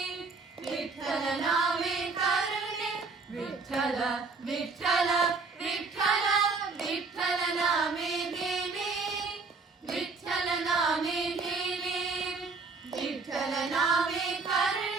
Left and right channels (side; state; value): left; quieter; 4.3 dB